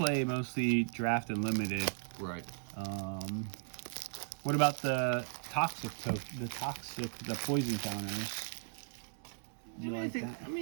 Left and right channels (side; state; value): left; silent; digital silence